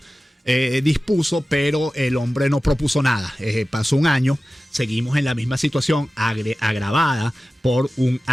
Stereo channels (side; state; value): both; normal; correlation 0.95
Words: dispuso, pero el hombre no propuso nada. Pasó un año, seguimos en la misma situación, agravada por un